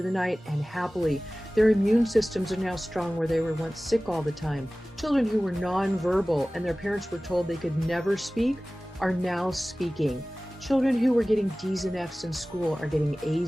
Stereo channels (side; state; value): both; normal; correlation 0.98